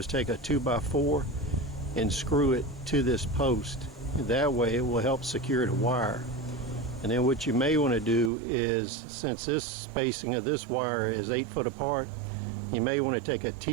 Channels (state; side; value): drops out; left; at 8.3 s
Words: take a 2x4 and screw it to this post. That way it will help secure the wire. And then what you may want to do is, since this spacing of this wire is 8 foot apart, you may want to take a